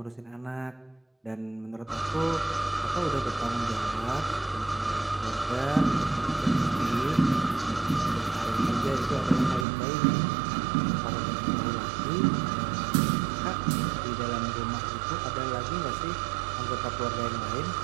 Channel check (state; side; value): drops out; left; at 9.7 s